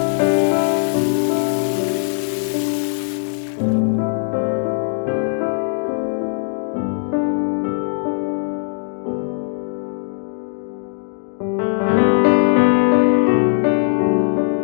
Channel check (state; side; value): silent; right; 66 dB below the other